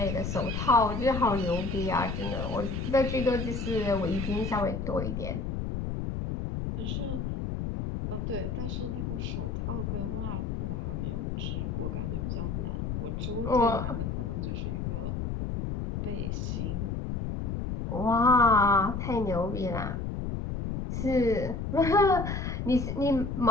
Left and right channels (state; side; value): noise; left; rumble, 3 dB below the sound